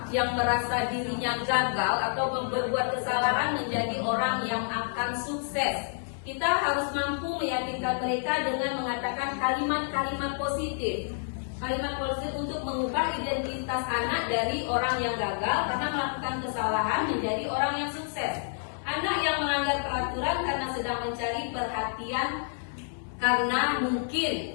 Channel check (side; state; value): right; silent; digital silence